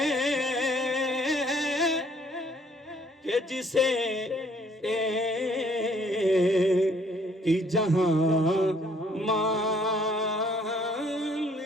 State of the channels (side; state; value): both; normal; correlation 0.62